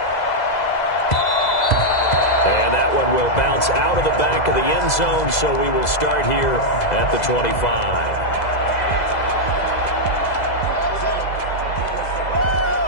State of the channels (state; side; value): late; right; 2.0 ms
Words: And that one will bounce out of the back of the end zone, so we will start here at the 25.